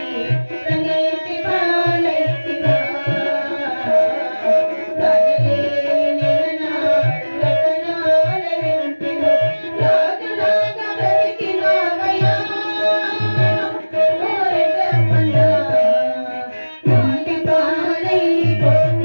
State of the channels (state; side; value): inverted; both; correlation -1.00